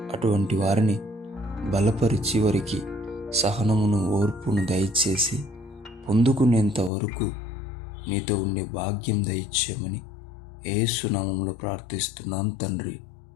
అటువంటి వారిని బలపరిచి వారికి సహనమును, ఓర్పును దయచేసి పొందుకునేంత వరకు నీతో ఉండే భాగ్యం దయచేయమని యేసు నామములో ప్రార్థిస్తున్నాం తండ్రి.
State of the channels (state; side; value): drops out; right; at 6.9 s